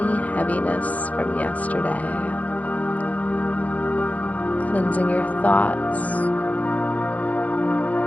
heaviness from yesterday, cleansing your thoughts,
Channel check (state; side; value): late; right; 0.072 ms